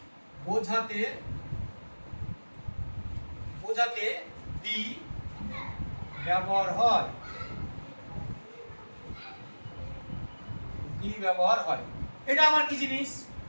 বোঝাতে দি ব্যবহার হয়। এটা আমার কি জিনিস?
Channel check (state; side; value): inverted; both; correlation -1.00